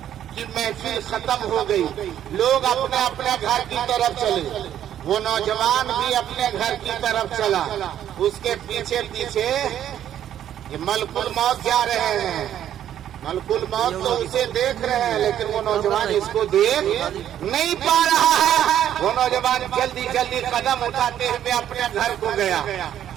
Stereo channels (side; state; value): left; quieter; 10.8 dB